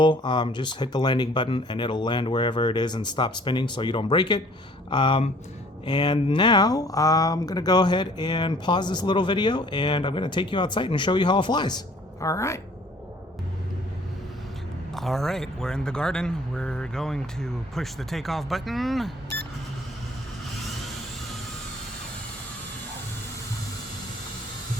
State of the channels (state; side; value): normal; both; correlation 0.55